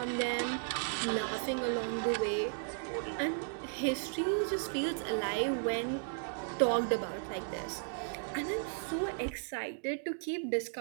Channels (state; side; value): silent; left; digital silence